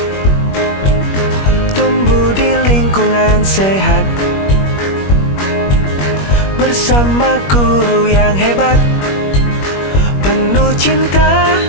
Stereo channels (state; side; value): late; right; 21 ms